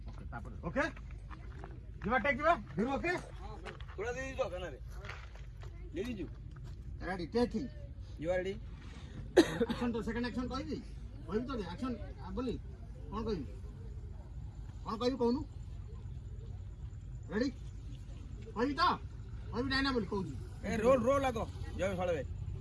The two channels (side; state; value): both; identical; correlation 1.00